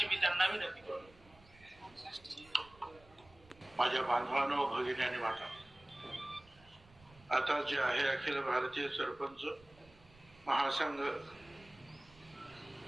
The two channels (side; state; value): right; noise; rumble, 25 dB below the sound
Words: मी त्यांना विनंती करतो. माझ्या बांधवांनो, भगिनी आणि माता, आता जे आहे अखिल भारतीय सरपंच महासंघ